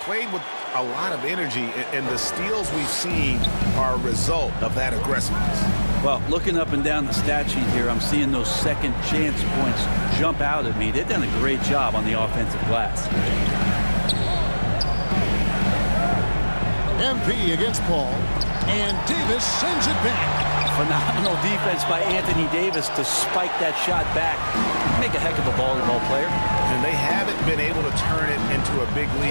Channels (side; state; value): both; inverted; correlation -1.00